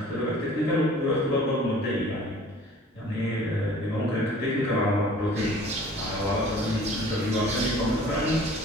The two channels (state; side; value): normal; both; correlation 0.49